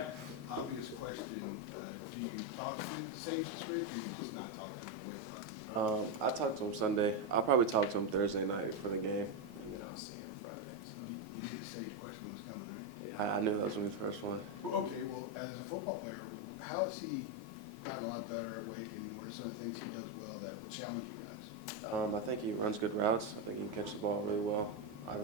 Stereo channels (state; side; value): normal; both; correlation 0.06